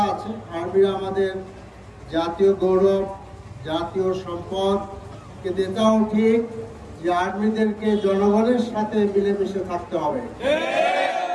আছে। আর্মিরা আমাদের জাতীয় গৌরব, জাতীয় সম্পদ, কিন্তু এটাও ঠিক যে আর্মিদেরকে জনগণের সাথে মিলেমিশে থাকতে হবে।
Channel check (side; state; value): both; identical; correlation 1.00